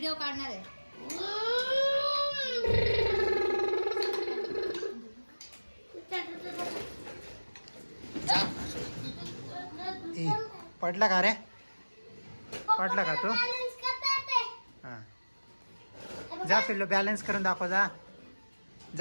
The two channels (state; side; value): inverted; both; correlation -1.00